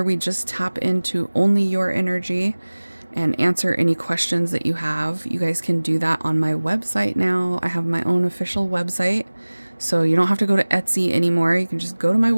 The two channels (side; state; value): both; inverted; correlation -1.00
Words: we just tap into only your energy and answer any questions that you have, you guys can do that on my website now. I have my own official website, so you don't have to go to Etsy anymore. You can just go to my